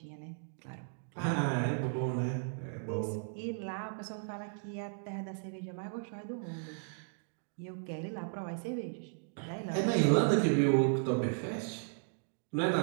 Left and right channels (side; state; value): left; silent; digital silence